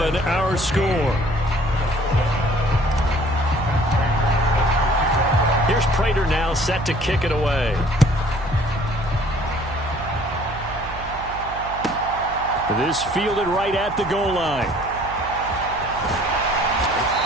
our score. Here's Prater now set to kick it away. This fielded right at the goal line.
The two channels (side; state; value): right; noise; hum, 14 dB below the sound